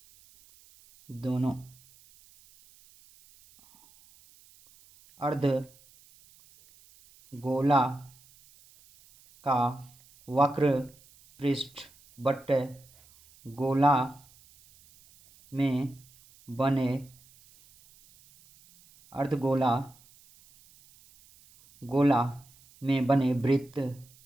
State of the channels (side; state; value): right; noise; hiss, 27 dB below the sound